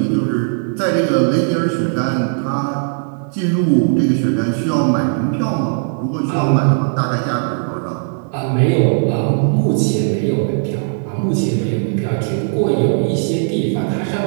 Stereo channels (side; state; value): left; silent; 63 dB below the other